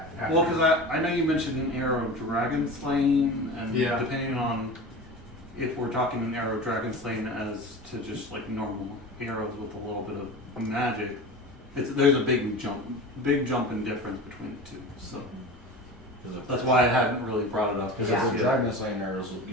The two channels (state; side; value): normal; both; correlation 0.32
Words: after. Well, because I know you mentioned an arrow dragon slaying, and Yeah. depending on if we're talking an arrow dragon slaying as to just like normal arrows with a little bit of magic, there's a big jump in difference between the two. So that's why I hadn't really brought it up. Because Yeah. if the dragon slaying arrows will